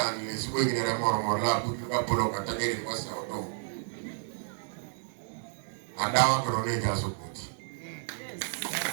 le subo igine re mor la butu ka polo kata geri wasa oto. Adawa kero ne ga so kuti.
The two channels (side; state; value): left; silent; digital silence